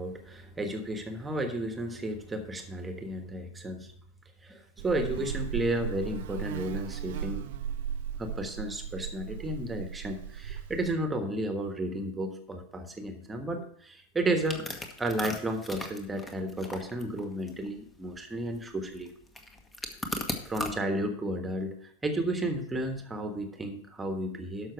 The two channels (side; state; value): both; normal; correlation 0.50